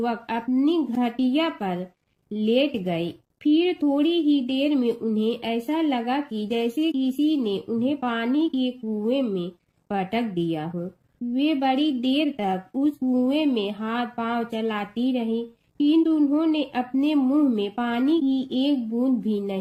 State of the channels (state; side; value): identical; both; correlation 1.00